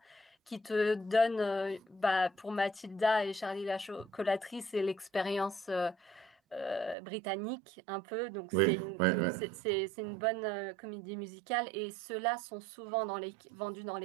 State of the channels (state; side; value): drops out; left; at 7.0 s